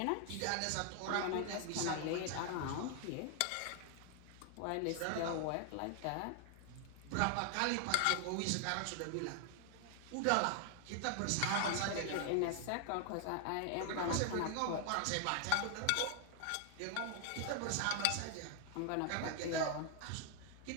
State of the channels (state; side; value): different; both; correlation 0.00